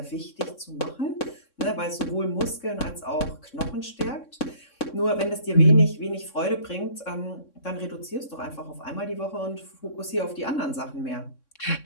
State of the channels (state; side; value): late; right; 3.6 ms